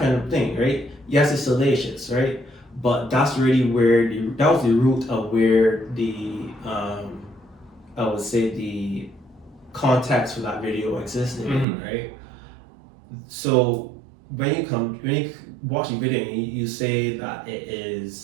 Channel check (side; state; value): left; drops out; at 11.7 s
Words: of thing, right? Yes, it's salacious, right? But that's really where that was the root of where the I would say the context for that video existed, Mhm. right? So when you watch the video and you say that it